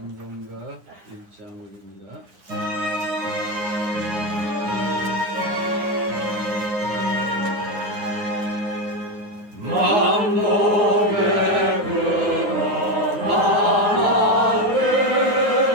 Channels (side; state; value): left; late; 9.6 ms